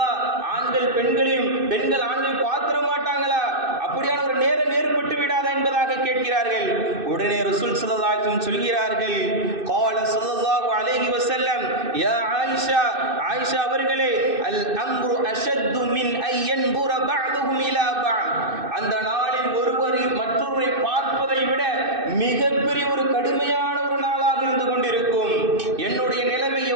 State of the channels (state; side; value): late; left; 2.6 ms